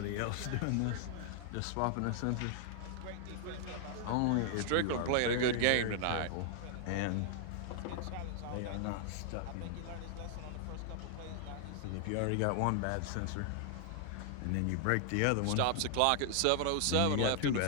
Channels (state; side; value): different; both; correlation 0.00